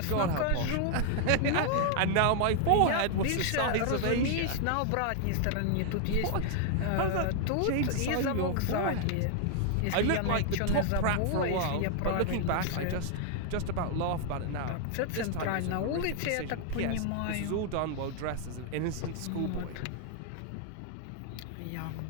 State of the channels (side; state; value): both; different; correlation 0.00